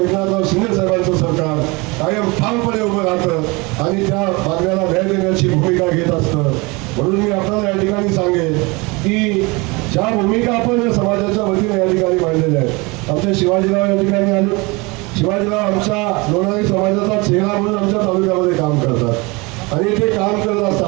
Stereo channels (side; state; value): left; quieter; 25.9 dB